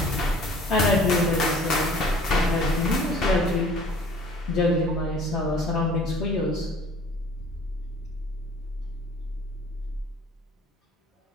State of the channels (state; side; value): normal; both; correlation 0.50